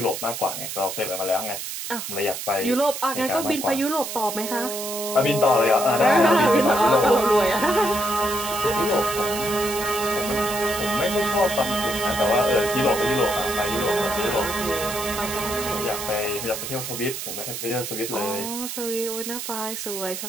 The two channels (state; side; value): noise; right; hiss, 6 dB below the sound